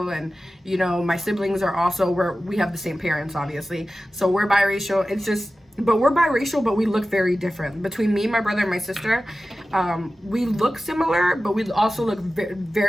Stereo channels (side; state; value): both; normal; correlation 0.95